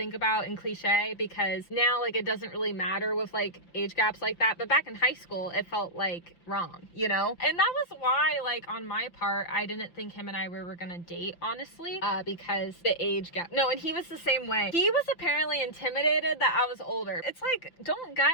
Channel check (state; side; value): late; right; 5.8 ms